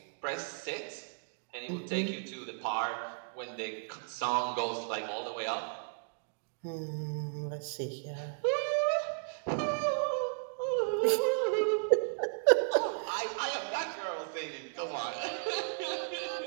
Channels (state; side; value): silent; left; digital silence